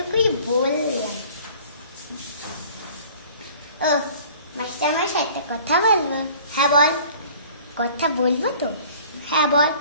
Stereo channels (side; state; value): both; inverted; correlation -0.49